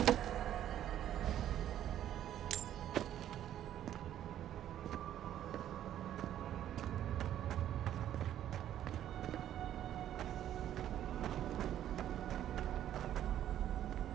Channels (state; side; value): quieter; left; 11.3 dB